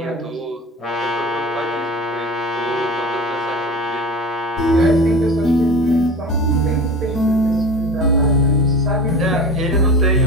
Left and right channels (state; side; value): normal; both; correlation 0.33